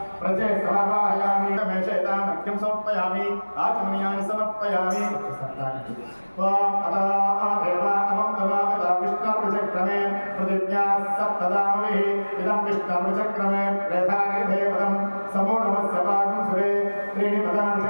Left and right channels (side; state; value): both; inverted; correlation -1.00